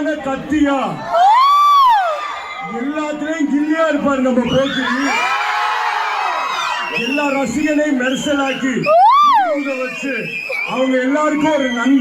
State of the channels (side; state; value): both; identical; correlation 1.00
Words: கத்தியா, எல்லாத்திலையும் கில்லியா இருப்பாரு நம்ம போக்கி. எல்லா ரசிகனையும் மெர்சலாக்கி வச்சு அவங்க எல்லாருக்கும் ஒரு